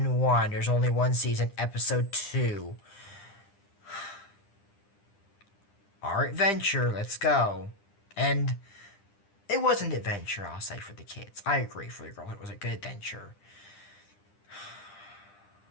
1. There's only one season, Episode 2. Our adventure, let's go. And it was an adventure, I'll say, for the kids. I agree, for the girls, it was a good adventure.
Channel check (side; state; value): right; late; 9.9 ms